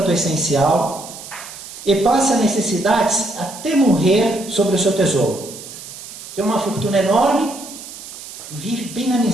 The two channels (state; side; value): noise; right; hiss, 14 dB below the sound